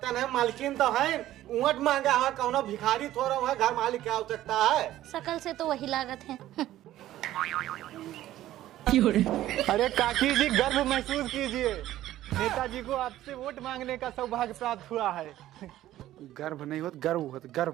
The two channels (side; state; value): left; quieter; 13.9 dB